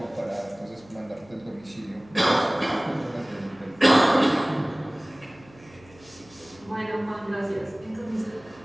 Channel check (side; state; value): right; noise; hum, 25 dB below the sound